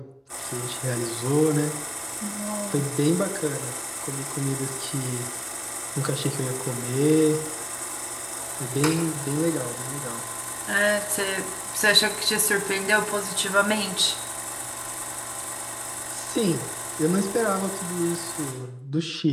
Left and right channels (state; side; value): identical; both; correlation 1.00